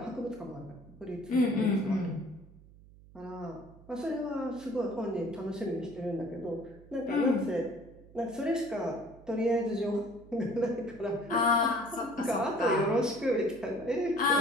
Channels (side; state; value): right; noise; hum, 22 dB below the sound